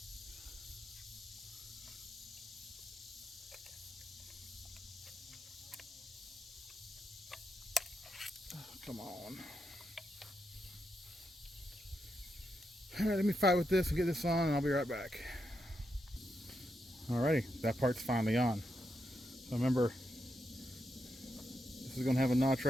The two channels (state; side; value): normal; both; correlation 0.84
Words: Come on. All right, let me fight with this and get this on, and I'll be right back. Alrighty, that part's finally on. So remember, this is gonna have a notch